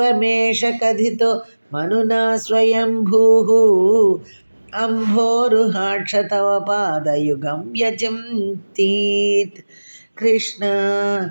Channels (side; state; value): both; inverted; correlation -1.00